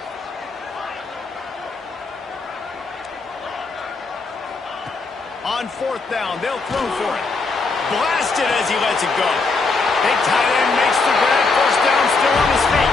On fourth down, they'll throw for it. Blasted as he lets it go. Big tight end makes the grab. First down, still on his feet.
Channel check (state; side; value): quieter; right; 4.0 dB